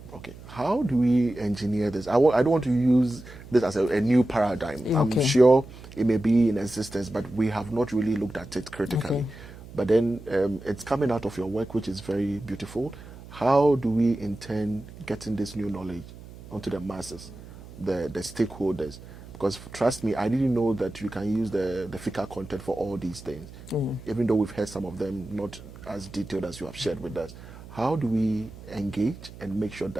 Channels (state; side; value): noise; right; hum, 17 dB below the sound